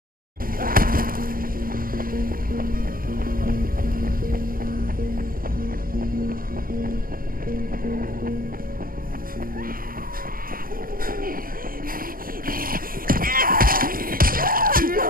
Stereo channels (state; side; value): late; left; 0.42 ms